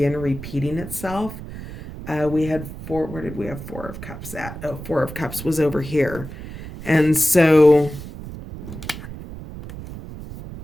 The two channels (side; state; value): right; noise; rumble, 11 dB below the sound